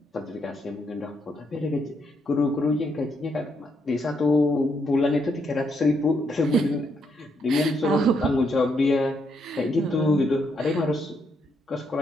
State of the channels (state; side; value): normal; both; correlation 0.77